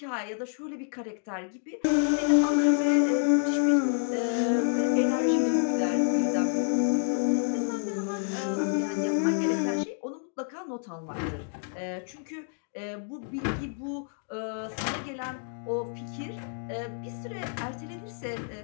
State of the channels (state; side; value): silent; right; 59 dB below the other